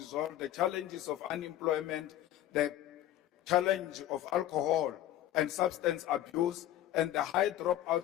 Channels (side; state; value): right; quieter; 13.0 dB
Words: the challenges of unemployment, the challenge of alcohol and substance abuse, and the high